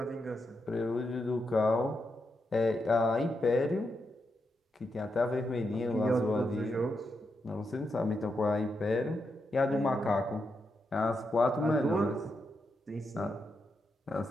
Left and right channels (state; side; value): normal; both; correlation 0.84